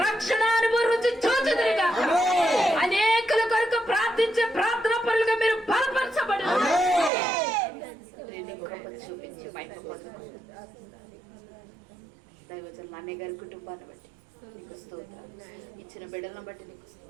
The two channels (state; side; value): drops out; left; at 7.1 s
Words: రక్షణ అనుభవం రుచి చూచుదురు గాక. అనేకుల కొరకు ప్రార్థించే ప్రార్థన పరులుగా మీరు బలపరచబడును. చూపించి దైవజనులు అన్నయ్య గారి కుటుంబాన్ని బట్టి నీకు స్తోత్రాలు. ఇచ్చిన బిడ్డలను బట్టి నీకు